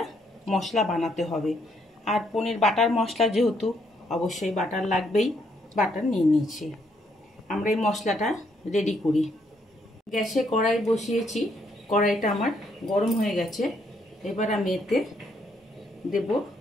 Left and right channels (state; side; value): normal; both; correlation 0.73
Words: মশলা বানাতে হবে। আর পনির বাটার মশলা যেহেতু অবশ্যই বাটার লাগবেই, বাটার নিয়ে নিয়েছি। আমরা এই মশলাটা রেডি করি। গ্যাসে কড়াই বসিয়েছি, কড়াইটা আমার গরম হয়ে গেছে। এবার আমি এতে দেব